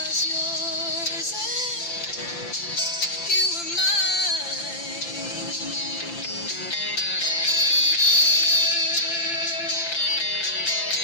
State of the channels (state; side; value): late; right; 5.8 ms